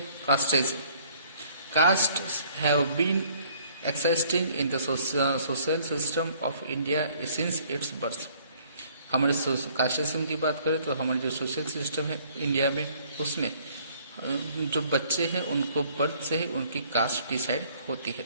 casteism. Caste have been existing in the social system of India since its birth. हमारे कास्टिज्म की बात करें तो हमारे जो सोशल सिस्टम है इंडिया में, उसमें जो बच्चे हैं उनको बर्थ से ही उनकी कास्ट डिसाइड होती है।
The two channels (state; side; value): inverted; both; correlation -0.59